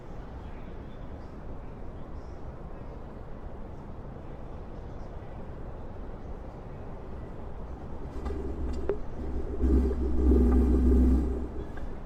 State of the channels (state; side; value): identical; both; correlation 1.00